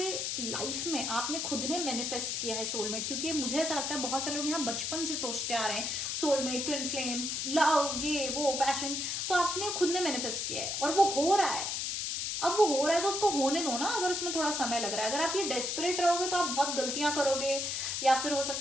लाइफ में आपने खुद ने मैनिफेस्ट किया है सोलमेट, क्योंकि मुझे ऐसा लगता है बहुत सारे लोग यहाँ बचपन से सोचते आ रहे हैं सोलमेट, ट्विन फ्लेम, लव, ये वो, पैशन, तो आपने खुद ने मैनिफेस्ट किया है और वो हो रहा है। अब वो हो रहा है तो उसको होने दो ना, अगर उसमें थोड़ा समय लग रहा है। अगर आप ये डेस्परेट रहोगे तो आप बहुत गलतियां करोगे, या फिर हो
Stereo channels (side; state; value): left; noise; hiss, 1 dB below the sound